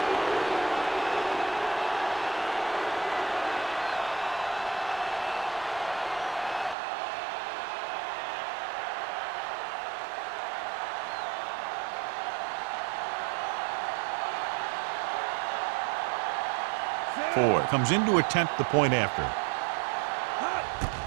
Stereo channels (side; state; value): left; drops out; at 6.8 s